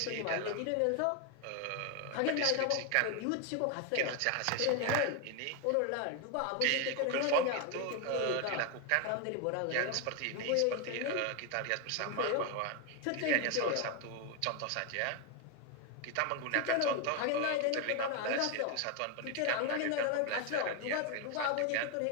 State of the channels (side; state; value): both; different; correlation 0.01